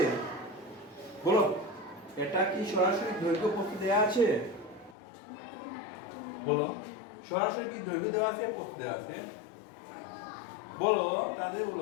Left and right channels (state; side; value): drops out; right; at 5.0 s